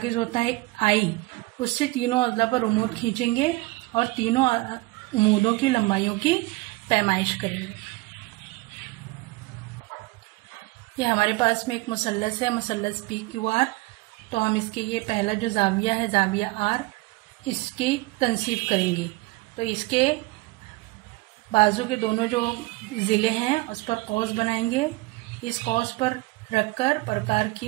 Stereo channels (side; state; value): left; quieter; 21.8 dB